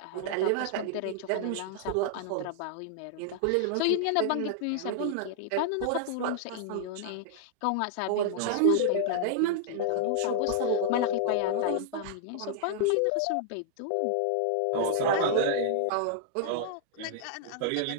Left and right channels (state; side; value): different; both; correlation -0.01